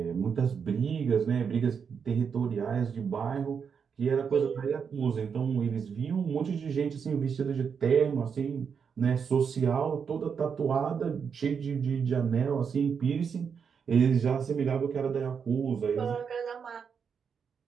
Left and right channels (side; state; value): left; quieter; 6.6 dB